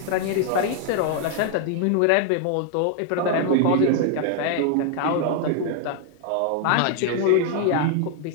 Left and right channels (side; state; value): both; different; correlation 0.00